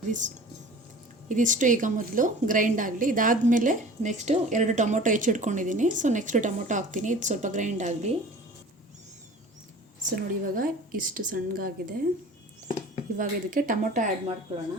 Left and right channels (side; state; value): both; normal; correlation 0.42